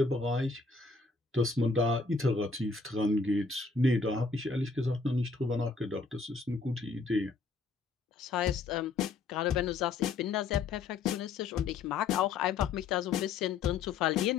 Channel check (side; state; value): right; quieter; 4.3 dB